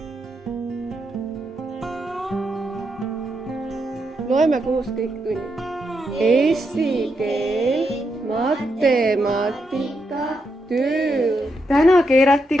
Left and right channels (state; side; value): normal; both; correlation 0.82